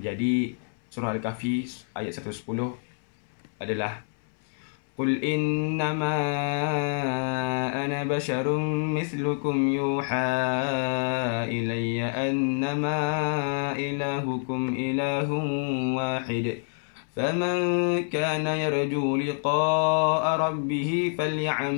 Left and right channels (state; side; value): silent; right; 60 dB below the other